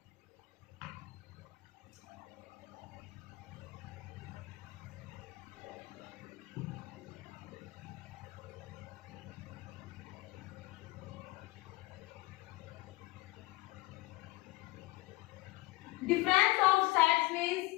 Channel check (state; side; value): quieter; right; 21.6 dB